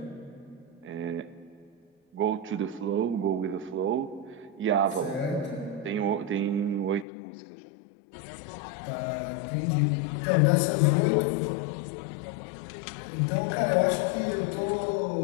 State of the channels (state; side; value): drops out; right; at 7.1 s